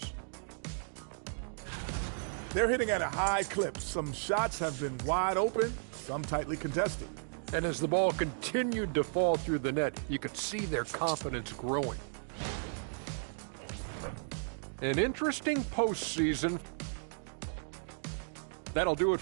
They're hitting at a high clip. Some shots have been wide open, some tightly contested. And as the ball continued to fall through the net, you could see their confidence growing. An interesting postseason. That'll do it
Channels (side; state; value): left; silent; digital silence